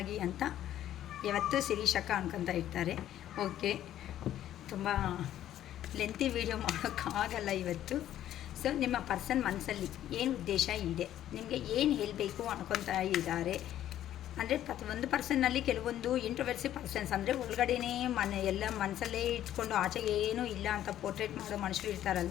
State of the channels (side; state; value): right; quieter; 12.0 dB